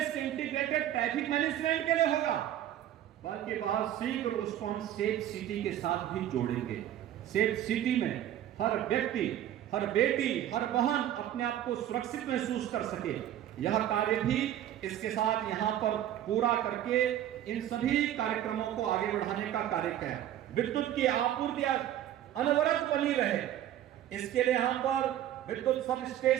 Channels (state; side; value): quieter; left; 11.8 dB